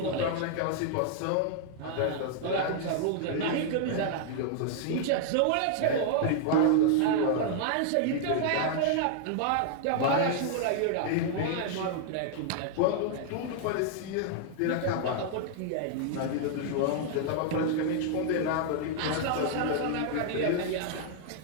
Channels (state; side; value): different; both; correlation -0.01